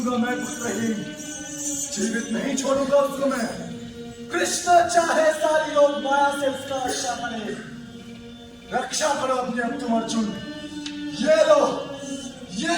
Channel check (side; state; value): both; identical; correlation 1.00